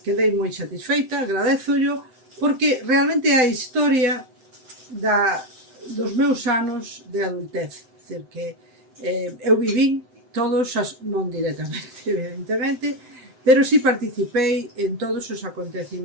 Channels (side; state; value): left; late; 7.8 ms